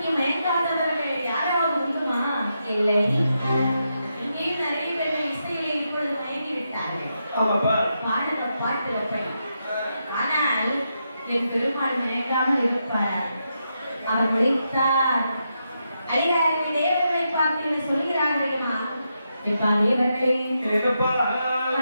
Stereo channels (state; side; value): inverted; both; correlation -0.84